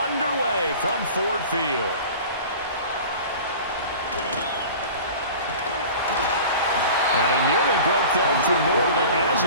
underway from Ford Field. And he nearly broke that for more, but as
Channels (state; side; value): inverted; both; correlation -0.39